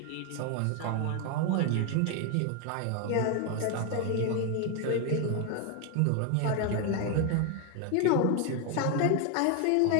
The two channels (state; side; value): different; both; correlation 0.01